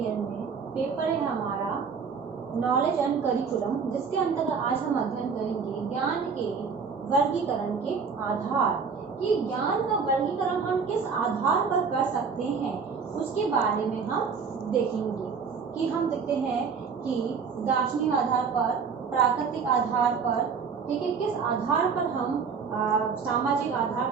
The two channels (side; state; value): left; quieter; 5.7 dB